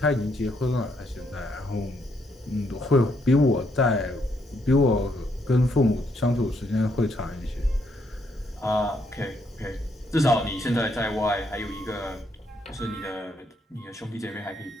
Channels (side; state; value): both; normal; correlation 0.74